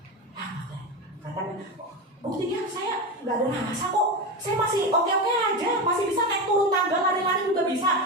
Katanya, buktinya saya nggak ada rasa kok, saya masih oke-oke aja, masih bisa naik turun tangga, lari-lari juga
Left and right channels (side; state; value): both; normal; correlation 0.19